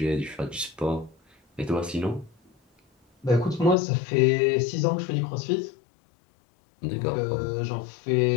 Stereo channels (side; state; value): right; drops out; at 3.8 s